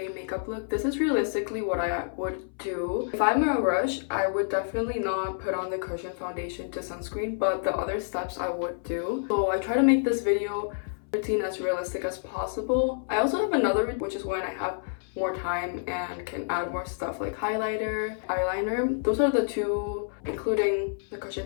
makeup look. This is realistically what I would do. If I'm in a rush, I would definitely not put on the cushion foundation to sunscreen, but the other steps I would do. So I try to make this video routine as realistic as possible. I also have another, which is when I have more time and can add more stuff like highlighter, eyeliner. Those are the 2, including the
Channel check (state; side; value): silent; right; 59 dB below the other